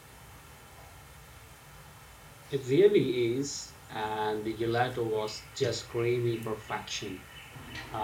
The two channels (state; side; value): identical; both; correlation 1.00